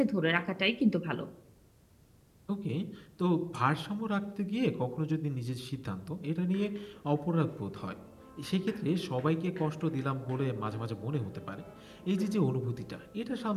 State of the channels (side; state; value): both; identical; correlation 1.00